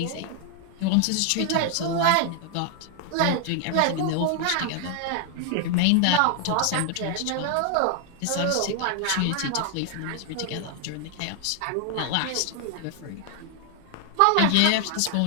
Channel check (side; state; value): both; different; correlation 0.00